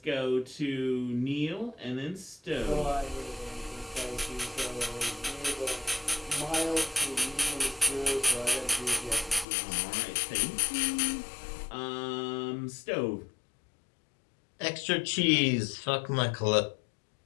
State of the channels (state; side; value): drops out; right; at 9.5 s